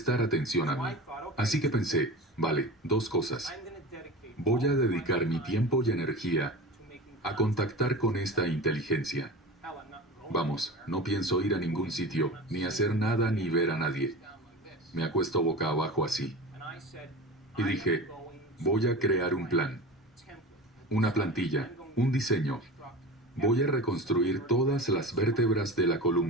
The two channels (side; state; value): both; normal; correlation 0.31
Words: atención a mí. Así que pensé, vale, dos cosas. Voy a dedicar mi tiempo y energía a contactar con esta inteligencia. Vamos, no pienso ir a ningún sitio, ni hacer nada ni ver a nadie. Me acuesto boca abajo así. Y dije, voy a crear un plan, una plantilla, un diseño. Voy a reconstruir todas las vértebras de la